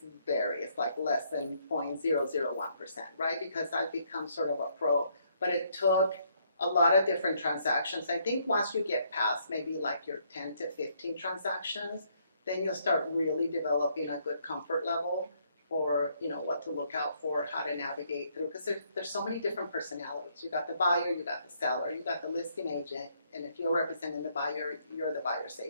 like less than 0.001%, right? Because I've become sort of a pro. But it took a lot of different transactions. I think once you get past maybe like your 10 to 15 transactions, then you'll start really developing a good comfort level for, what to look out for, how to navigate through. Because there's so many different personalities. You got the buyer, you got the seller, you got the listing agent, and if you're representing the buyer, you're the buyer's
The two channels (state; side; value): inverted; both; correlation -0.70